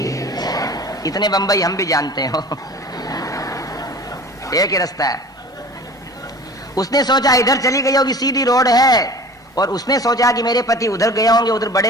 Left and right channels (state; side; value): normal; both; correlation 0.42